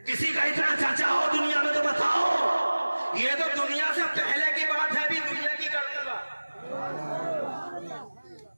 किसी का इतना चर्चा हो दुनिया में तो बताओ। ये तो दुनिया से पहले की बात है, अभी दुनिया की कर दूंगा।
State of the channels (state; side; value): inverted; both; correlation -1.00